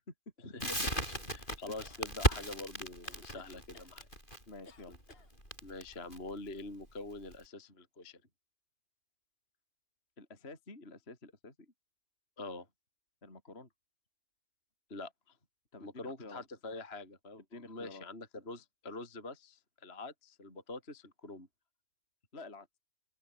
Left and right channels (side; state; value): right; late; 2.5 ms